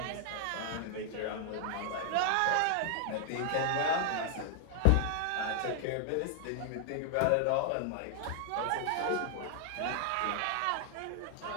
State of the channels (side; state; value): both; different; correlation 0.00